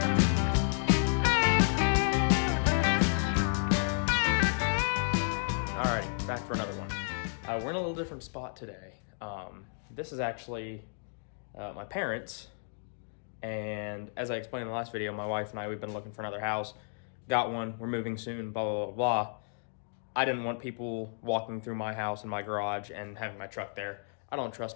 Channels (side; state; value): right; silent; digital silence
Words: Alright, back for another one. We're in a little different spot today. This is actually my parents, and as I explained in the last video, my wife and I, we've been looking for another house. Got one, we're moving soon, blah, blah, blah, blah. I didn't want people walking through my house and my garage and having my truck there. I don't